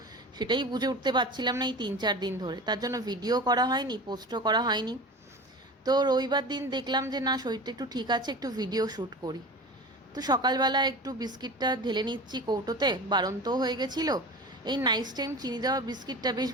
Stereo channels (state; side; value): normal; both; correlation 0.33